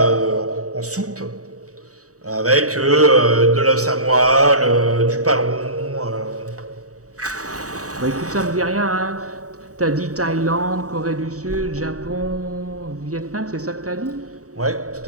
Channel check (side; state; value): left; late; 0.66 ms